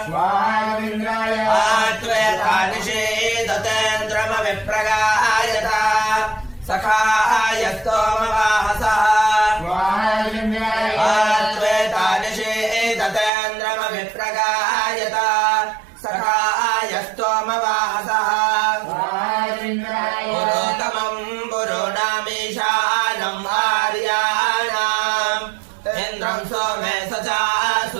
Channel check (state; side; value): drops out; left; at 13.3 s